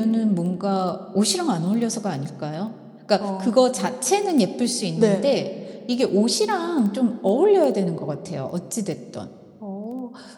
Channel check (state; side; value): identical; both; correlation 1.00